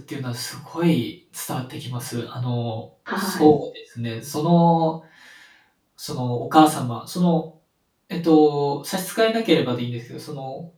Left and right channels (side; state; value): both; identical; correlation 1.00